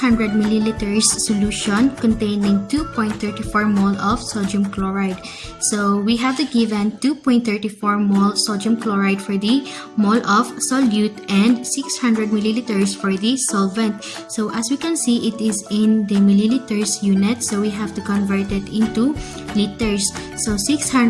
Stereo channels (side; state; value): both; identical; correlation 1.00